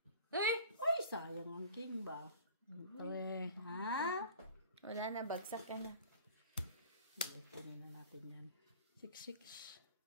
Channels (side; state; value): both; inverted; correlation -0.44